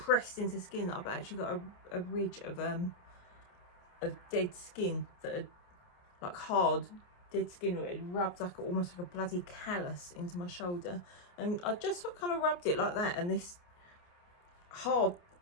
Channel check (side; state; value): right; late; 28 ms